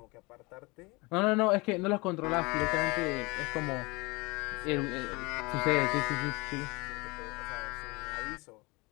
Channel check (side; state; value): right; quieter; 25.7 dB